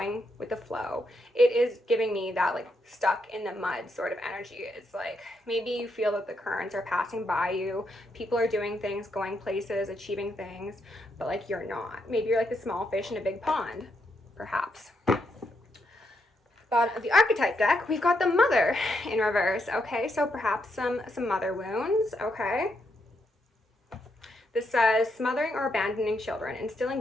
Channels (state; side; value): normal; both; correlation 0.80